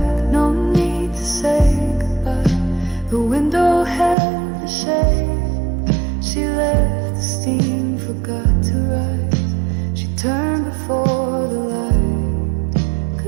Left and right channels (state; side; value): drops out; left; at 4.2 s